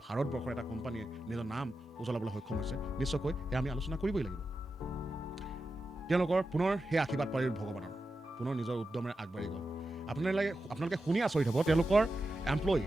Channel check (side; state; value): both; normal; correlation 0.90